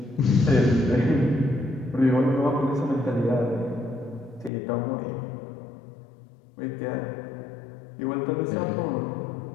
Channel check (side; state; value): right; drops out; at 4.5 s